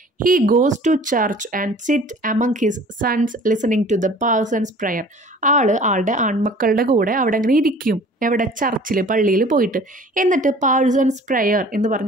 He goes to church and sit among his sons listening to the parson's prayer. ആളുടെ ആൺമക്കളുടെ കൂടെ അവിടെ അങ്ങനെ ഇരിക്കും. എവിടെ? ചർച്ചിൽ, പള്ളിയിൽ പോയിട്ട്. എന്നിട്ട് പാഴ്സൺസ് പ്രയർ എന്ന്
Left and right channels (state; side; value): normal; both; correlation 0.48